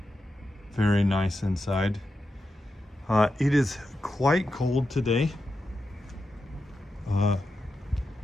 very nice inside. It is quite cold today.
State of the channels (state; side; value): normal; both; correlation 0.88